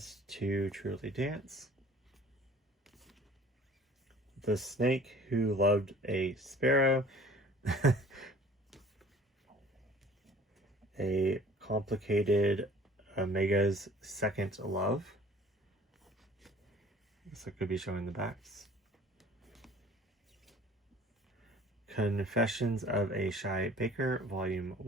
to Truly Dance. The Snake Who Loved a Sparrow. A Complicated Omega's Second Love. This could be showing the backs. Confessions of a Shy Baker, Volume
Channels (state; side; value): normal; both; correlation 0.49